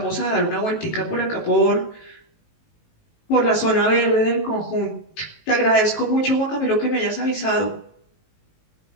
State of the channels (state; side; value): late; right; 19 ms